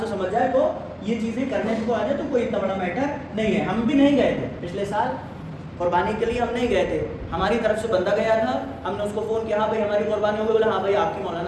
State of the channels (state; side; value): identical; both; correlation 1.00